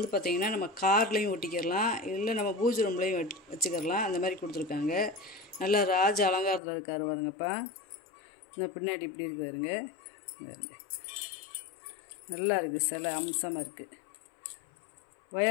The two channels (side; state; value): right; drops out; at 6.6 s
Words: பார்த்திங்கன்னா நம்ம கார்லேயும் ஒட்டிக்கிறலாம், இல்லை நம்ம பூஜை ரூம்லேயும் வச்சுக்கிறலாம். அந்த மாதிரி கொடுத்துருக்காங்க. நல்லா ராஜ அலங்காரத்தில் இருக்காரு பாருங்கப்பா. இந்த பின்னாடி இப்படி இருக்கு பாருங்க. நல்லா இருக்குது, சிலை அம்சமாக இருக்குது.